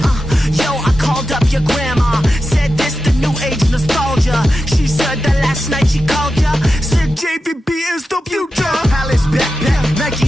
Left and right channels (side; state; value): both; normal; correlation 0.91